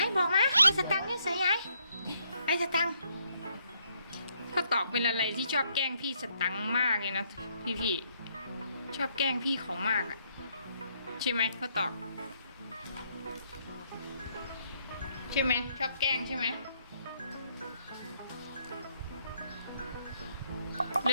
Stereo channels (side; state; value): both; inverted; correlation -0.72